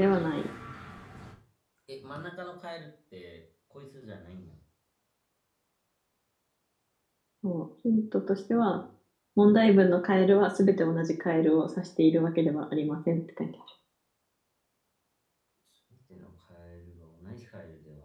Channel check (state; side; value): identical; both; correlation 1.00